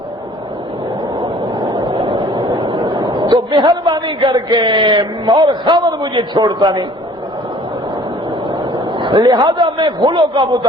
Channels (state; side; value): normal; both; correlation 0.52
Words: تو مہربانی کر کے، اور خاوند مجھے چھوڑتا نہیں، لہذا میں خلو کا